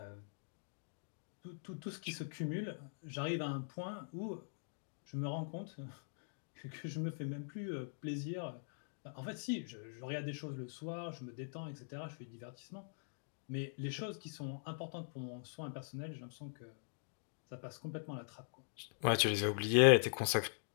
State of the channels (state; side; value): silent; right; digital silence